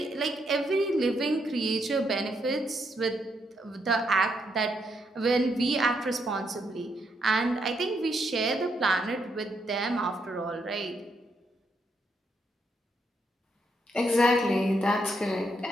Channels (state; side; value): normal; both; correlation 0.77